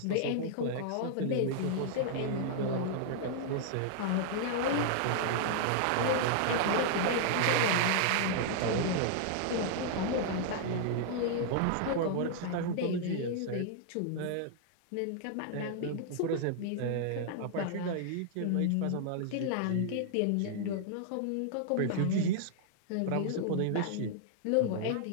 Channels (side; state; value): both; different; correlation -0.01